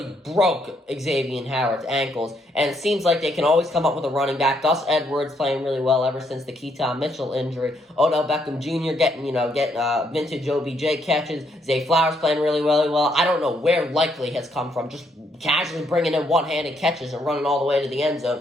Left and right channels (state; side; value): normal; both; correlation 0.73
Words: broke Xavier Howard's ankles, and it seems like they can always come up with a running back. Gus Edwards playing really well ever since the Keaton Mitchell injury. Odell Beckham Jr. getting vintage OBJ catches. Zay Flowers playing really, really well. I don't know where Likely has come from, just casually bringing in one-handed catches and running all the way to the end